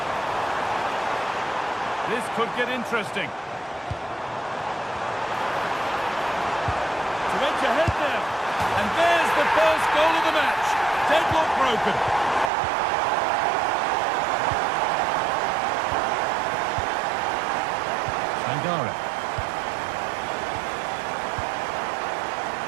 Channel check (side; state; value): left; drops out; at 12.5 s